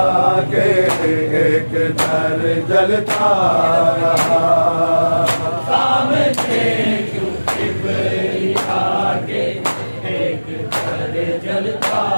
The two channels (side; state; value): both; inverted; correlation -1.00